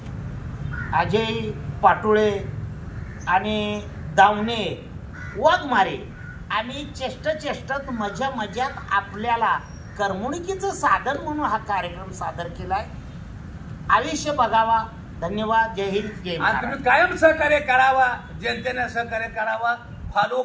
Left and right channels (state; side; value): identical; both; correlation 1.00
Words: अजय पाटोळे आणि दावणे वाघमारे आणि चेष्टत मजात आपल्याला करमणुकीचं साधन म्हणून हा कार्यक्रम सादर केलाय. आयुष्य बघावा. धन्यवाद. जय हिंद जय महाराष्ट्र. तुम्ही कायम सहकार्य करावा. जनतेने सहकार्य करावा. फॉलो